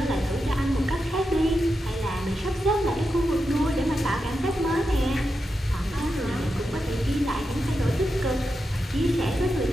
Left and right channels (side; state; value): both; normal; correlation 0.88